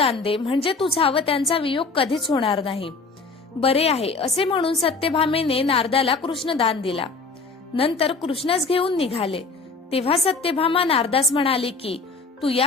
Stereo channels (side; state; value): right; quieter; 4.1 dB